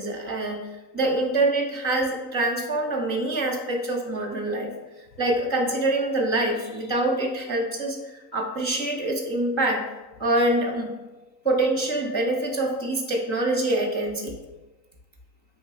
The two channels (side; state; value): right; late; 3.9 ms